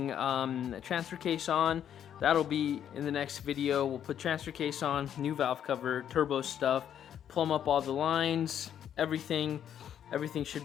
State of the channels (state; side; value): quieter; right; 9.6 dB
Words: transfer case on. That'll be in the next video. We'll put transfer case on, new valve cover, turbo stuff, plumb up all the lines, everything should